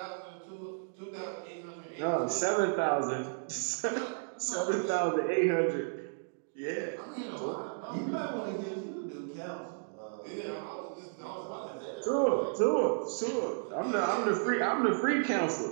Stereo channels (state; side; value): silent; left; digital silence